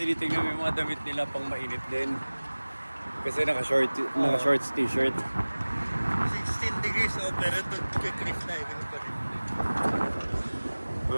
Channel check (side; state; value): both; inverted; correlation -1.00